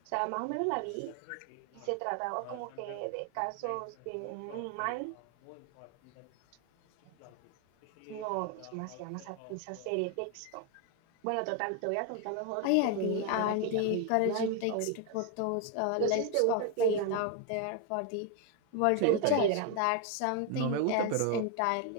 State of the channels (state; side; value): different; both; correlation 0.01